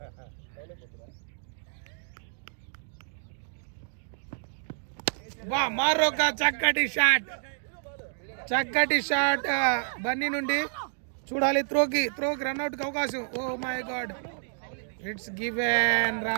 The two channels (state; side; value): silent; left; digital silence